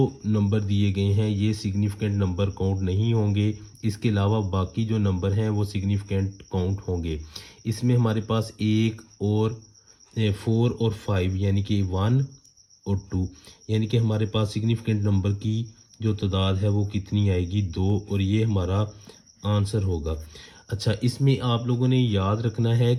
नंबर दिए गए हैं ये सिग्निफिकेंट नंबर काउंट नहीं होंगे। इसके अलावा बाकी जो नंबर हैं वो सिग्निफिकेंट काउंट होंगे। इसमें हमारे पास 1 और 4 और 5 यानी कि 1 और 2, यानी कि हमारे पास सिग्निफिकेंट नंबर की जो तादाद है वो कितनी आएगी, 2, और ये हमारा आंसर होगा। अच्छा, इसमें आप लोगों ने याद रखना है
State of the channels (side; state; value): both; identical; correlation 1.00